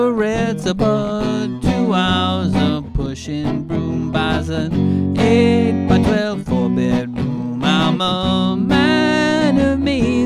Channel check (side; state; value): both; identical; correlation 1.00